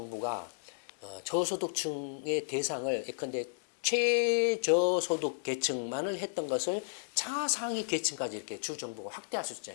저소득층의 대상을 예컨대 최저소득 계층만을 했던 것을 차상위 계층까지 이렇게 주 정부가 확대할 수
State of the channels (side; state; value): right; silent; 56 dB below the other